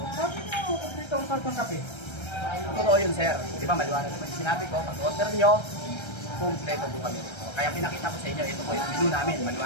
Sabi ko, dito ang kartong kape. Totoo yun, sir. Di ba, maliwanag naman sinabi ko, pag-order nyo, kumpleto po kami rito. Kaya pinakita ko sa inyo, ito po yung menu namin.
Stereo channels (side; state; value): right; late; 1.3 ms